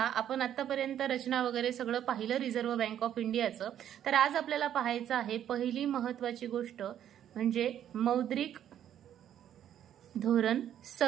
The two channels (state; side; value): quieter; left; 10.4 dB